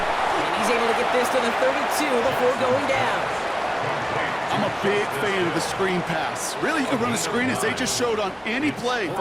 he's able to get this to the 32 before going down. I'm a big fan of the screen pass. Really, you can run a screen as they just showed on any play.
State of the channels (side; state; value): both; identical; correlation 1.00